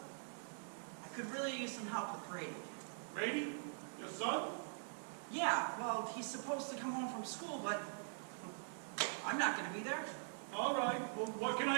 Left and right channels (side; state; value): left; silent; digital silence